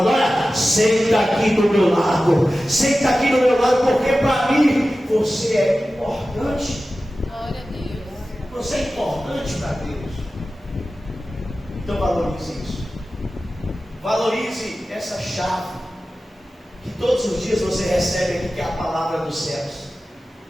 olha, senta aqui do meu lado, senta aqui do meu lado, porque para mim você é importante. Glória a Deus. Você é importante para Deus. Então valorize isso. Valorize essa chave que todos os dias você recebe aqui, que é a palavra dos céus.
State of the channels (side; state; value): both; normal; correlation 0.95